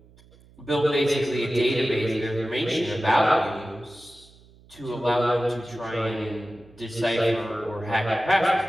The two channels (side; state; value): right; noise; hum, 26 dB below the sound